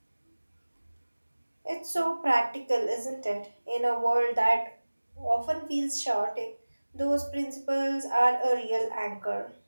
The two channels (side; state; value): both; inverted; correlation -1.00